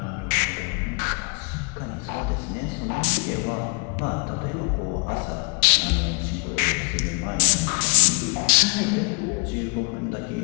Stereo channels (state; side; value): quieter; right; 34.0 dB